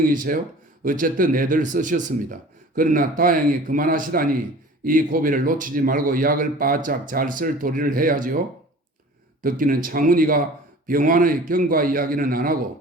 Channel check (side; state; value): both; normal; correlation 0.43